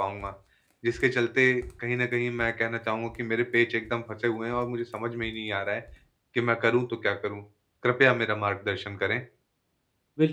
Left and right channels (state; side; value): identical; both; correlation 1.00